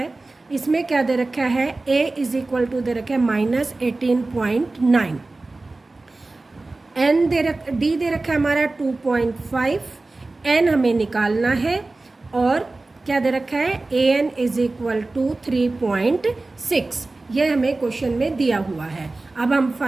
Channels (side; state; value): left; quieter; 3.2 dB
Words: इसमें क्या दे रखा है a इज इक्वल टू दे रखा है -18.9, n डी दे रखा है हमारा 2.5, n हमें निकालना है और क्या दे रखा है a n is equal to 3.6। ये हमें क्वेश्चन में दिया हुआ है। अब हम